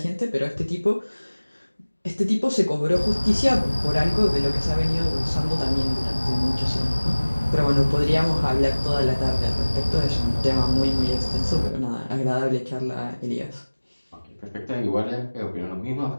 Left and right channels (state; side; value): inverted; both; correlation -1.00